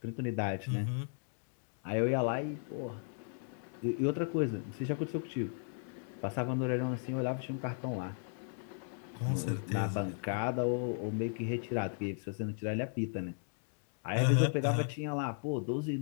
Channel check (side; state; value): right; silent; digital silence